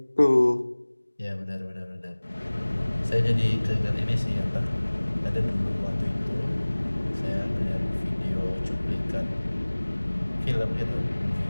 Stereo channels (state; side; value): inverted; both; correlation -1.00